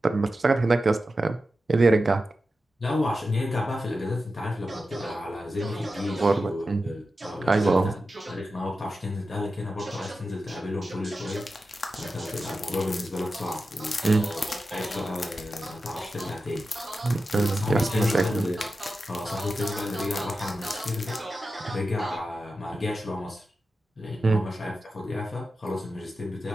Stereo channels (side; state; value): both; normal; correlation 0.91